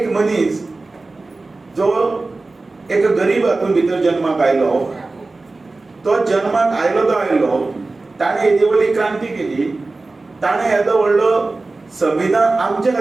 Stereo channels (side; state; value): left; quieter; 3.4 dB